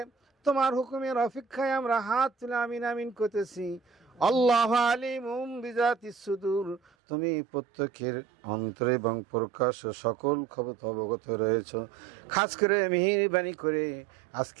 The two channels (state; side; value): drops out; left; at 6.8 s